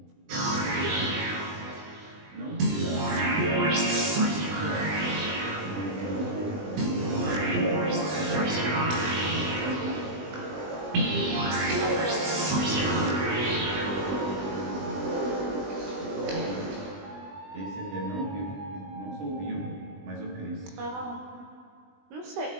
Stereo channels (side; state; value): left; late; 20 ms